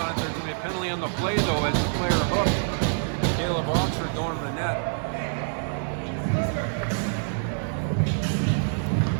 it. There's going to be a penalty on the play though as the player hooked. Caleb Oxford going to the net.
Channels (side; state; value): left; silent; digital silence